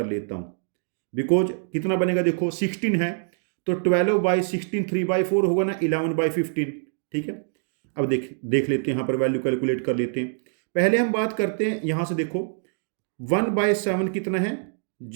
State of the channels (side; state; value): left; silent; digital silence